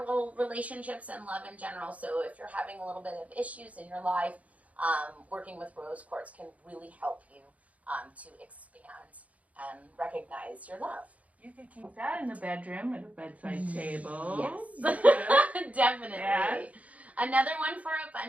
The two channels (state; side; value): late; left; 0.069 ms